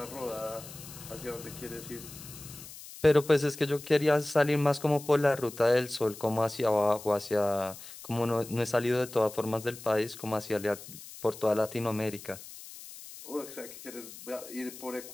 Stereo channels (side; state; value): left; noise; hiss, 15 dB below the sound